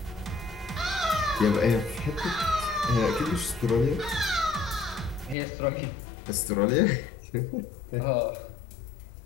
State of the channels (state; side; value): drops out; right; at 5.4 s